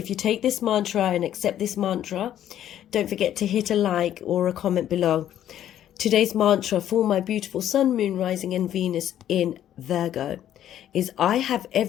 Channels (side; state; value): right; quieter; 11.2 dB